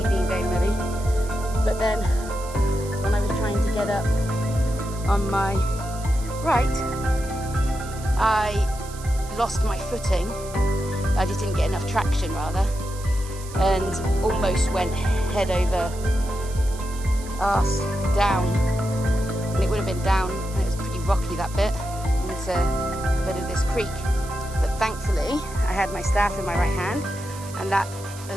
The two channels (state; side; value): noise; right; hiss, 16 dB below the sound